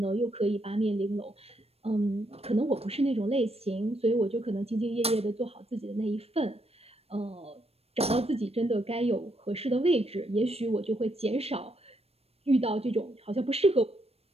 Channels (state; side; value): late; left; 0.29 ms